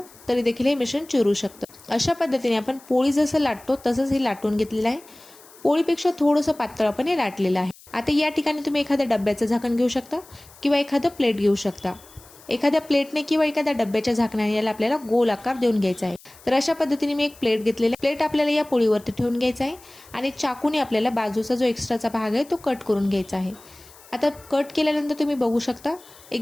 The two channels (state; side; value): noise; left; hiss, 23 dB below the sound